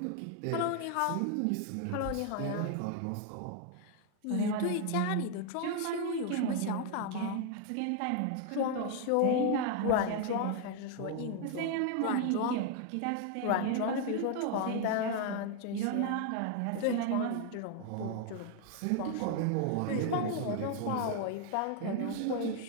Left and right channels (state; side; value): different; both; correlation 0.00